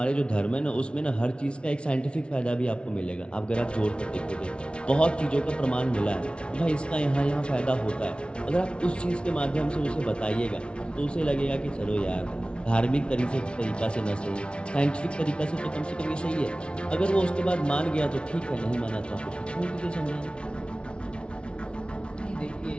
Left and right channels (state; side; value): late; right; 0.058 ms